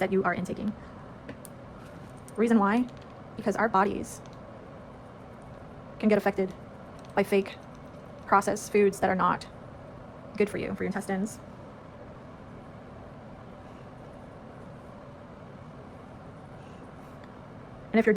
you are intaking. Reason why? Because our bodies can get affected by fake processed foods that are not good for you, for your intestines. And if you're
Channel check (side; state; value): both; identical; correlation 1.00